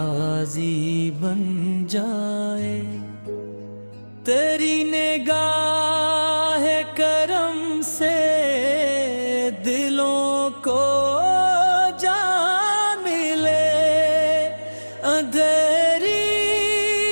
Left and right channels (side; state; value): both; inverted; correlation -1.00